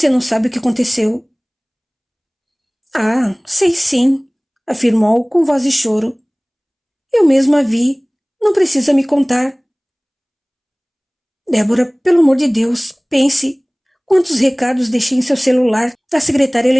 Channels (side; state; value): both; identical; correlation 1.00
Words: não sabe o que aconteceu. Ah, sei sim, afirmou com voz de choro. Eu mesma a vi. Não precisa me contar. Débora, pelo amor de Deus, pense. Quantos recados deixei em seu celular da secretária